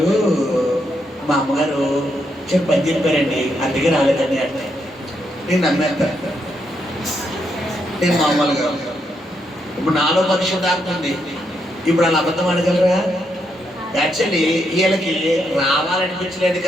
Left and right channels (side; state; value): both; normal; correlation 0.79